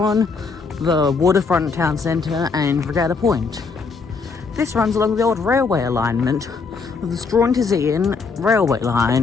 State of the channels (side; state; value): right; quieter; 4.7 dB